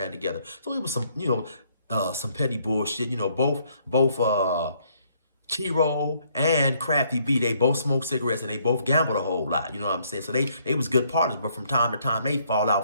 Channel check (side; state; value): both; inverted; correlation -0.68